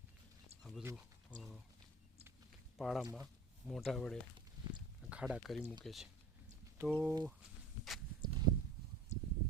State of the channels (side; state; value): left; quieter; 3.6 dB